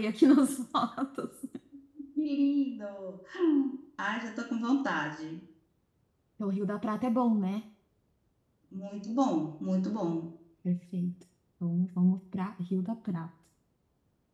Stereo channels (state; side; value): identical; both; correlation 1.00